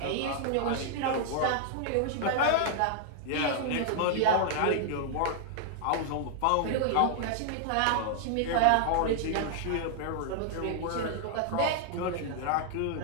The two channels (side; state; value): both; different; correlation -0.01